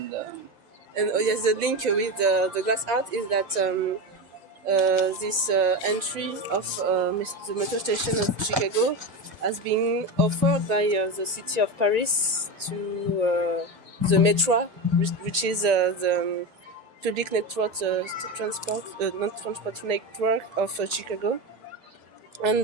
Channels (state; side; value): late; left; 1.9 ms